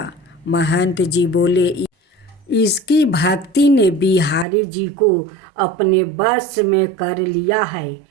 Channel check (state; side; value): drops out; left; at 4.5 s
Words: महंत जी बोले, इसकी भक्ति ने बिहारी जी को अपने बस में कर लिया है।